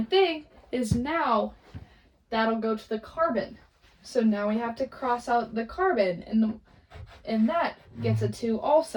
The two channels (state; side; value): identical; both; correlation 1.00